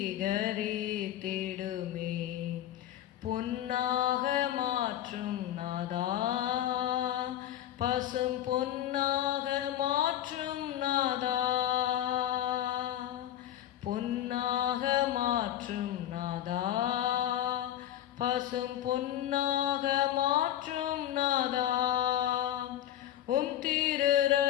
பொன்னாக மாற்றும் நாதா, பசும் பொன்னாக மாற்றும் நாதா, பொன்னாக மாற்றும் நாதா, பசும் பொன்னாக மாற்றும் நாதா. திரு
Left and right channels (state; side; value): quieter; right; 12.0 dB